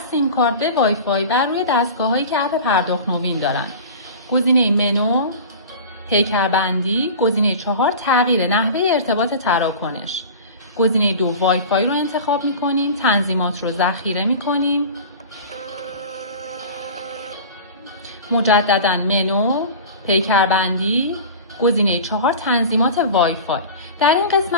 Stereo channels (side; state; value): both; inverted; correlation -0.35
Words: کارت به وای فای بر روی دستگاه‌هایی که اپ پرداخت نوین دارند. گزینه منو، پیکربندی، گزینه 4 تغییر نحوه ارتباط تراکنش. گزینه 2 وای فای رو انتخاب می‌کنیم، تنظیمات رو ذخیره می‌کنیم. مجدداً منو، پیکربندی، گزینه 4 تنظیمات وای فای. در این